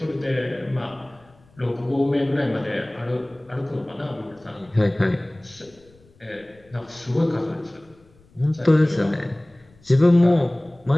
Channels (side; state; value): left; noise; rumble, 29 dB below the sound